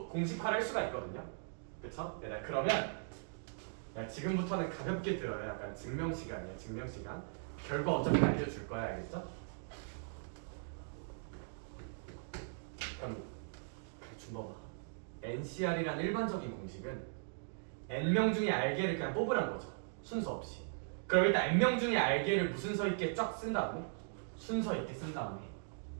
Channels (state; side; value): silent; left; digital silence